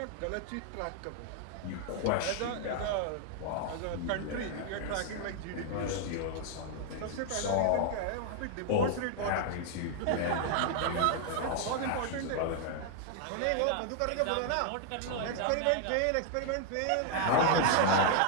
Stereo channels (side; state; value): both; different; correlation 0.00